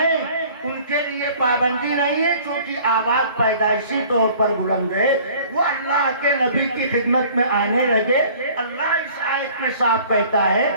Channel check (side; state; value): both; inverted; correlation -0.51